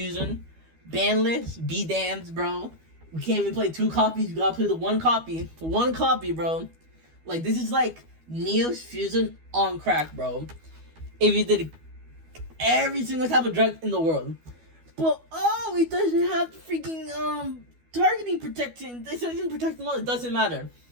Banless, be damned, bro. We can't even play 2 copies, you gotta play the 1 copy. 1 copy, bro. Like, this is like Neo's Fusion on crack, bro. If you did every single type of drug in the world. But, oh, it doesn't have freaking, targeting protection. It doesn't protect them all. It doesn't matter.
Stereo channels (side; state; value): left; late; 12 ms